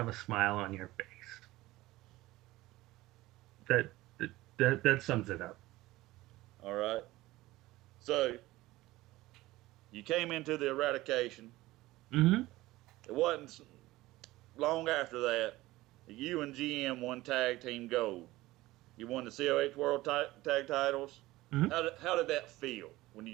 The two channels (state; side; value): quieter; left; 18.1 dB